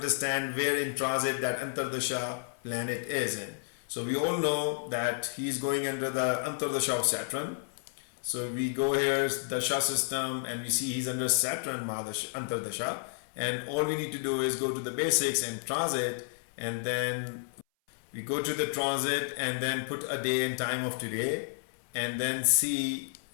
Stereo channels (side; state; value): right; silent; 57 dB below the other